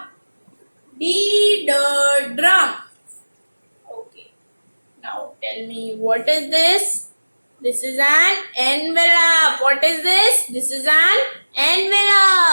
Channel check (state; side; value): inverted; both; correlation -1.00